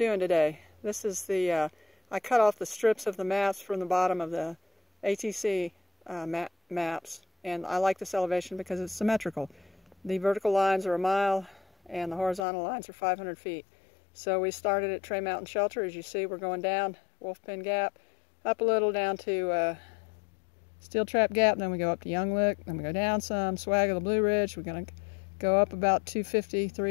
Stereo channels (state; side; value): drops out; right; at 12.5 s